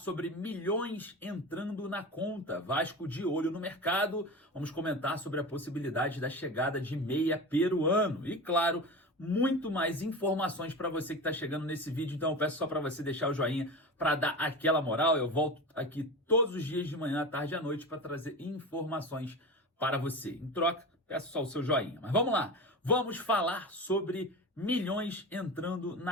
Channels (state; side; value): normal; both; correlation 0.28